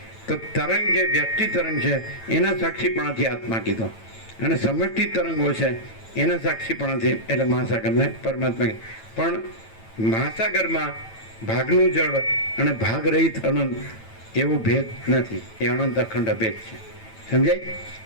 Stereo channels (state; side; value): late; right; 9.0 ms